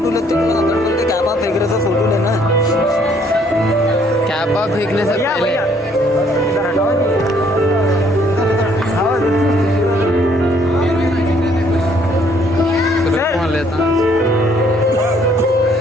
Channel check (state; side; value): normal; both; correlation 0.64